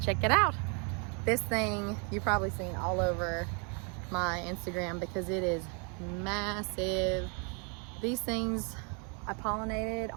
check it out. This thing you've probably seen all over my Instagram because it is massive. These things I pollinated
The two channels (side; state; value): left; quieter; 36.5 dB